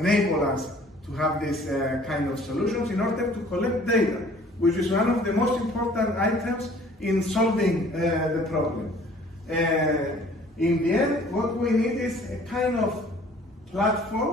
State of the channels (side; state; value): both; normal; correlation 0.53